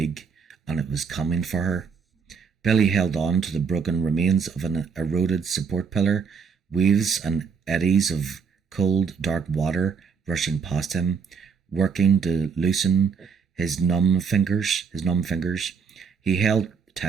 and it was coming for her. Billy held on to the broken remains of an eroded support pillar, waves and eddies of cold, dark water rushing past him, working to loosen his numb fingers. He held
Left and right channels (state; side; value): quieter; left; 6.0 dB